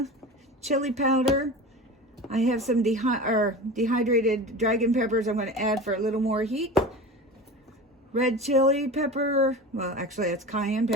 chili powder. I have some dehydrated dragon peppers I'm gonna add for a little more heat. Red chili pepper, well actually that's cayenne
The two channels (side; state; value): both; normal; correlation 0.32